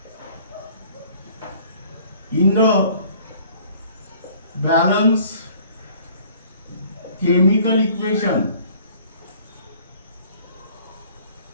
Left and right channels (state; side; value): inverted; both; correlation -0.54